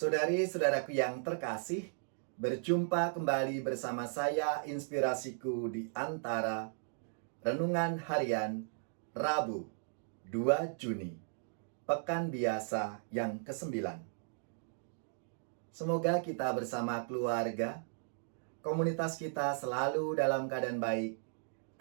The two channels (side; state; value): left; silent; digital silence